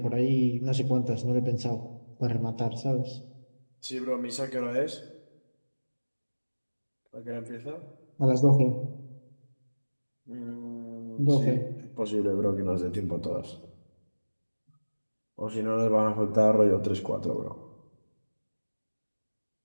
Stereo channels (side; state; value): both; inverted; correlation -1.00